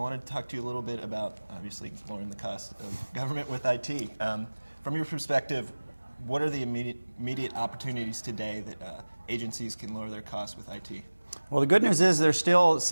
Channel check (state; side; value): inverted; both; correlation -1.00